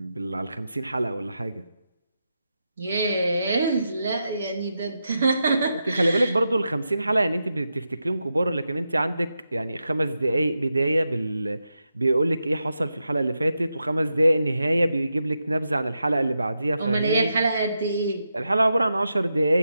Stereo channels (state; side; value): inverted; both; correlation -0.87